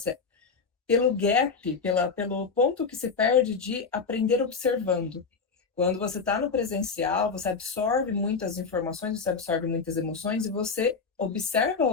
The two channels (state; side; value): quieter; right; 5.1 dB